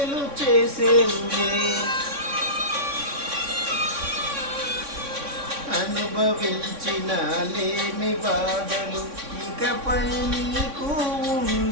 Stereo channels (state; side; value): late; left; 3.6 ms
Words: చేసేవులే. అనుభవించిన లేమి బాధలు ఇకపై నీకు